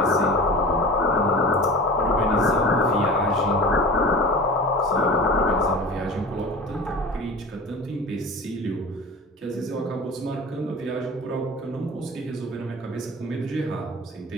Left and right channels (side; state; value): both; normal; correlation 0.35